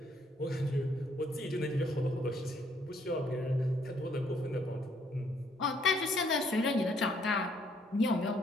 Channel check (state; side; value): normal; both; correlation 0.68